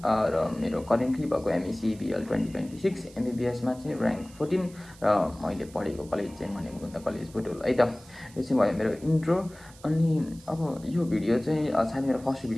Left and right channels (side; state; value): right; noise; hiss, 23 dB below the sound